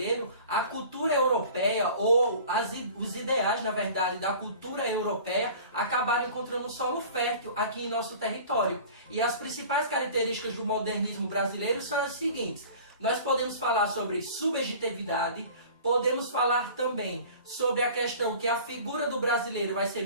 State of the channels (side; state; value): both; inverted; correlation -0.43